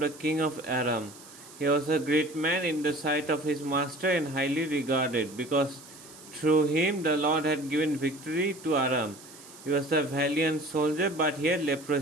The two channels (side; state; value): right; noise; hiss, 19 dB below the sound